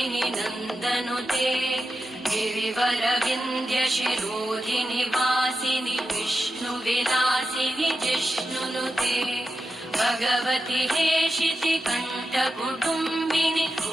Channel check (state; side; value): normal; both; correlation 0.89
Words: नन्दनुते गिरिवरविन्द्यशिरोधिनि वासिनि विष्णुविलासिनि जिष्णुनुते भगवति हेशिति कण्ठकुटुम्बिनि